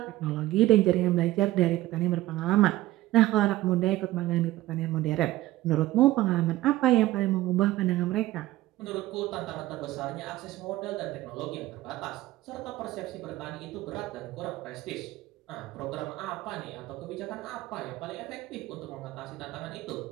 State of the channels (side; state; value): left; quieter; 16.6 dB